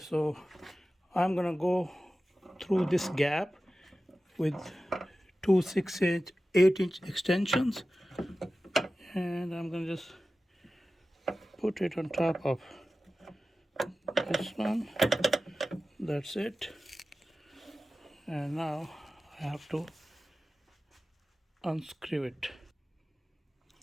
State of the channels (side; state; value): both; normal; correlation 0.95